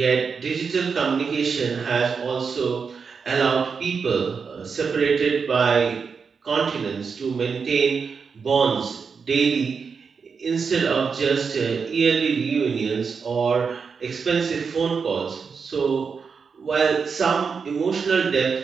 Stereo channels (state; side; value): quieter; left; 5.6 dB